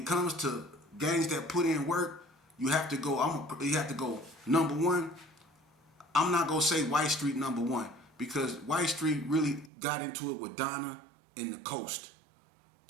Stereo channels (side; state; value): left; drops out; at 9.7 s